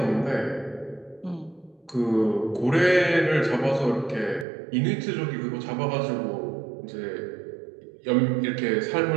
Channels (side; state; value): left; drops out; at 4.5 s